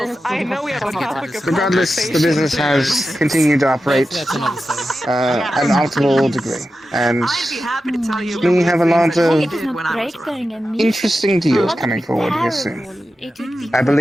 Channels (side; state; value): both; normal; correlation 0.91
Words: I know we have a topic of Regardless, the business has continued to operate at an optimal degree, and we have a lot of interesting deals coming forward here soon. I